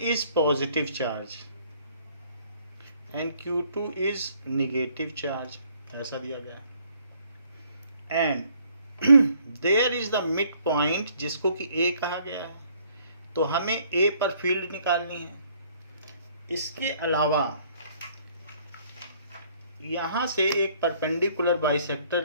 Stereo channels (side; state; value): both; inverted; correlation -0.62